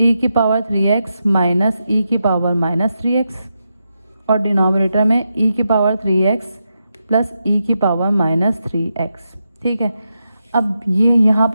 की पावर 3x माइनस ई की पावर -3x, और डिनोमिनेटर में ई की पावर 3x प्लस ई की पावर -3x। ठीक है, अब ये यहाँ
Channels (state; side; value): inverted; both; correlation -0.86